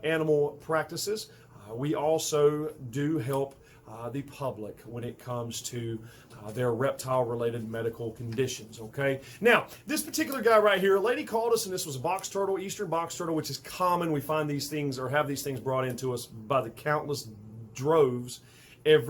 animal practices, we also do help the public when it comes to their reptile-related medical conditions, okay? Now, this particular guy right here, a lady called us, and this was a box turtle, eastern box turtle, which is common. We find these things or have these things brought into us by the countless droves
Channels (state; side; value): identical; both; correlation 1.00